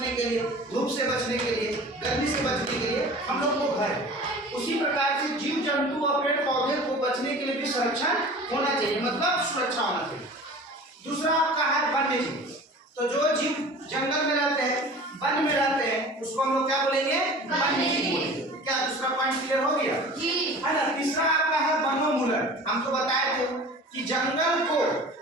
के लिए, धूप से बचने के लिए, गर्मी से बचने के लिए हम लोग को घर। उसी प्रकार से जीव जंतु और पेड़ पौधे को बचने के लिए भी संरक्षण होना चाहिए, मतलब सुरक्षा होना चाहिए। दूसरा आपका है वन्य जीव। तो जो जीव जंगल में रहते हैं, वन में रहते हैं, उसको हम लोग क्या बोलेंगे? वन्य जीव बोलेंगे। क्या दूसरा पॉइंट क्लियर हो गया? है ना? तीसरा आपका है वनोन्मूलन। हम तो बताए थे कि जंगल को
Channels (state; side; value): normal; both; correlation 0.41